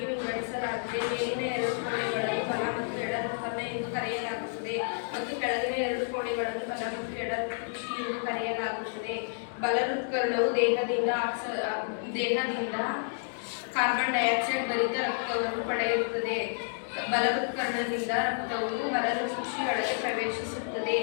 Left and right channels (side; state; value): right; silent; digital silence